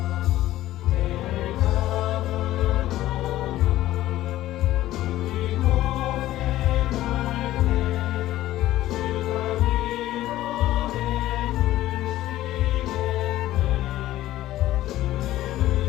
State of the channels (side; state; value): right; quieter; 14.9 dB